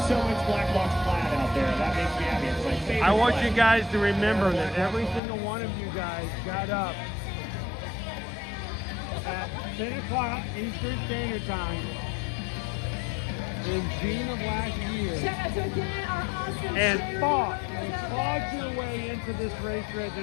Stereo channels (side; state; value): right; drops out; at 5.2 s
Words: so much black box plaid out there. That makes me happy. It's my favorite. I want plaid. you guys to remember that every single one of you guys got up at 10 o'clock Eastern Standard Time in June of last year Shout out to again our awesome and fought your way into this race